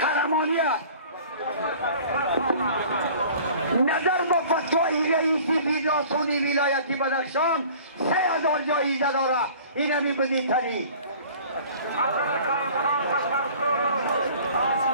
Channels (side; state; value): both; inverted; correlation -0.47